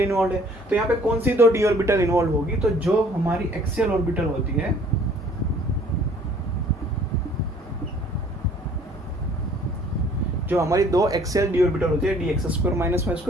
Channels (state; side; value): normal; both; correlation 0.56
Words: है। तो यहाँ पे कौन सी 2 d ऑर्बिटल इन्वॉल्व होगी? तो जो हमारी एक्सियल ऑर्बिटल होती है, जो हमारी 2 एक्सियल d ऑर्बिटल होती है, dx² -y²